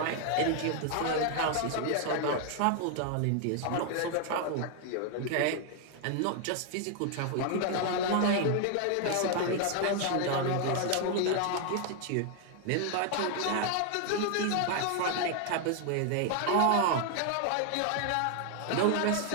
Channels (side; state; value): both; different; correlation 0.00